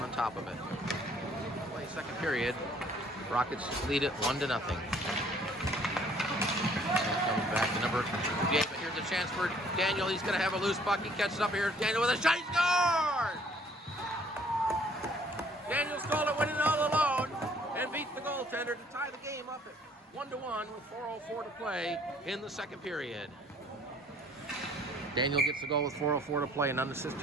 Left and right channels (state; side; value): normal; both; correlation 0.59